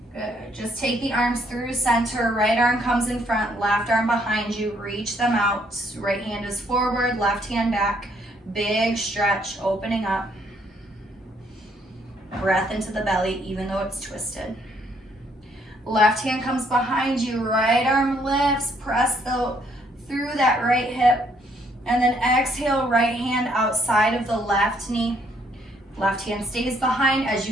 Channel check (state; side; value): normal; both; correlation 0.68